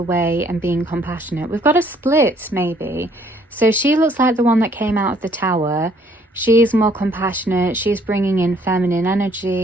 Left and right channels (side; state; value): both; normal; correlation 0.63